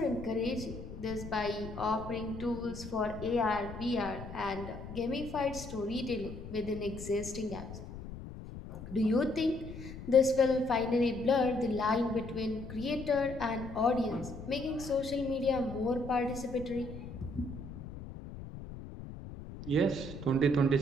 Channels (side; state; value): left; noise; rumble, 11 dB below the sound